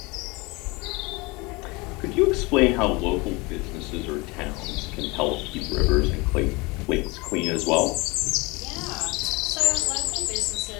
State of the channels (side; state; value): right; quieter; 25.6 dB